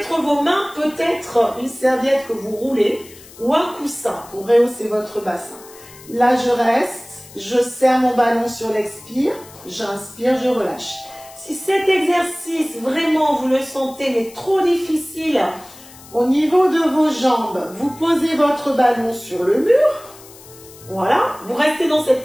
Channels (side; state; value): left; noise; hiss, 21 dB below the sound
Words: vos mains, peut-être une serviette que vous roulez ou un coussin pour rehausser votre bassin. Là, je reste. Je serre mon ballon sur l'expire. J'inspire, je relâche. Si cet exercice, vraiment, vous le sentez, mais trop difficile, Au niveau de vos jambes, vous posez votre ballon sur le mur. Voilà, vous restez dans cette